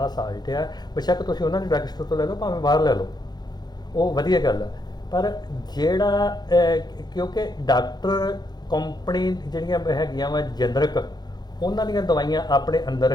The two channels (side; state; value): right; late; 0.20 ms